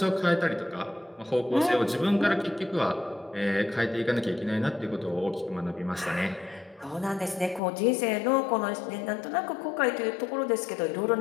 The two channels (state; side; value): drops out; right; at 7.6 s